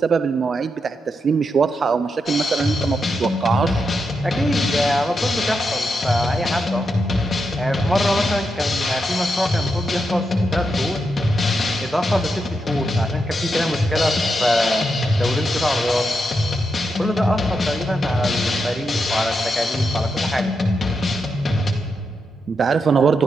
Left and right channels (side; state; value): both; normal; correlation 0.84